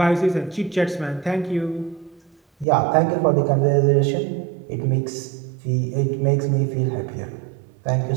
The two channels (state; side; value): drops out; left; at 2.7 s